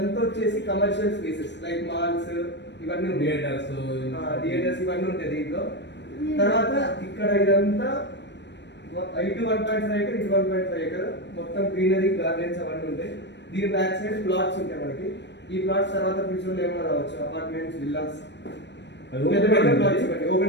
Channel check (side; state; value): right; late; 0.51 ms